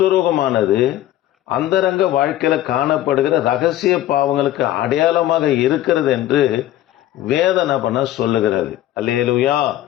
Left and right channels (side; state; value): right; quieter; 13.4 dB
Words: அந்தரங்க வாழ்க்கையில காணப்படுகிற ரகசிய பாவங்களுக்கு அடையாளமாக இருக்கிறது என்று வேதனை சொல்லுகிறது. அல்லேலூயா.